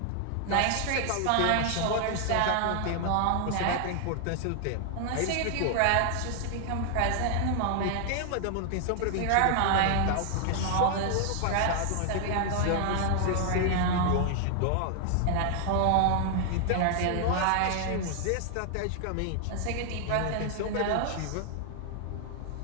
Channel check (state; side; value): different; both; correlation 0.00